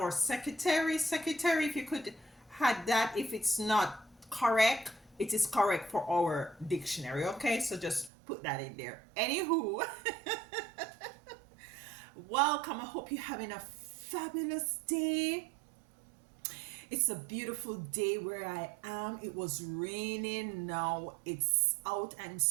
secretary. Secretary, if you could add that, if it's not correct, it is correct for our dictionary. Okay, so just put that in there. Anywho, welcome. I hope you're having a fabulous day. It's a beautiful day where I am. It was raining. Now it's out and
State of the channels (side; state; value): left; drops out; at 8.1 s